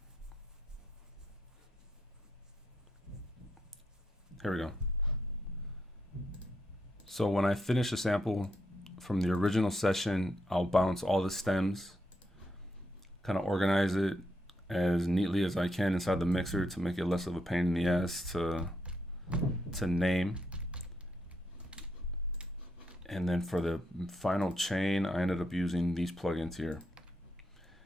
Here we go. So when I finish a sample from the original session, I'll bounce all the stems, kind of organize it as neatly as I can inside the mixer to make it less of a pain in the ass to name. And then for the final chain, I ended up using these plugins here.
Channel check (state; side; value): normal; both; correlation 0.79